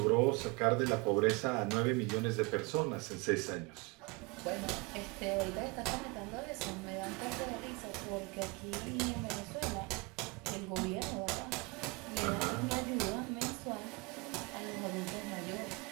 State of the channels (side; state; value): left; quieter; 27.7 dB